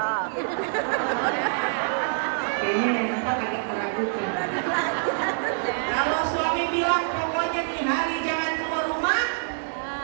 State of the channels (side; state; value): left; silent; 58 dB below the other